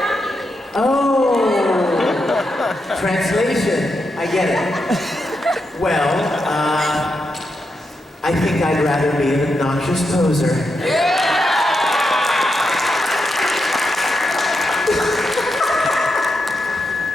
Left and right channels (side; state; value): both; normal; correlation 0.84